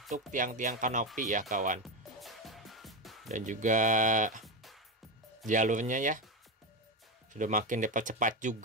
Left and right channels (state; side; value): normal; both; correlation 0.13